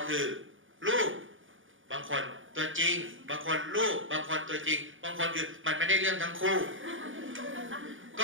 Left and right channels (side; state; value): left; late; 0.57 ms